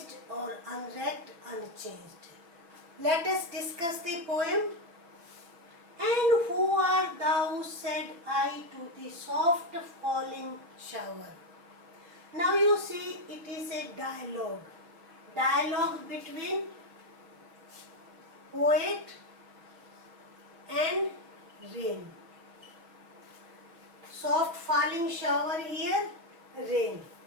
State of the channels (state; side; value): late; left; 6.1 ms